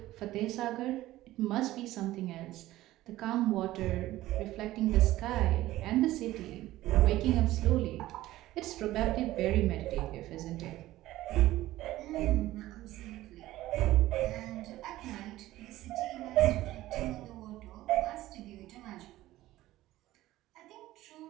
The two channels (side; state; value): left; quieter; 16.0 dB